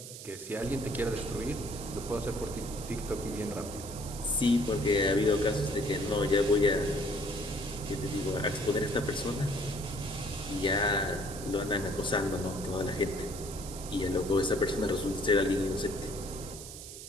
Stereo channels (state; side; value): noise; right; hiss, 12 dB below the sound